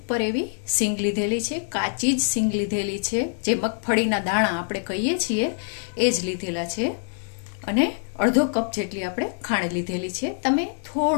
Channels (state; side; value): silent; right; digital silence